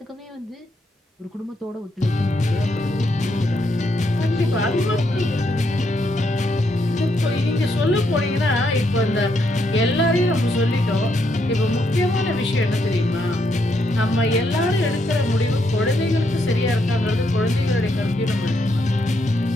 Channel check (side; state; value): both; normal; correlation 0.77